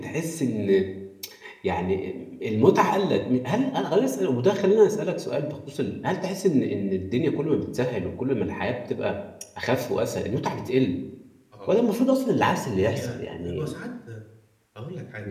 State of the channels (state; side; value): identical; both; correlation 1.00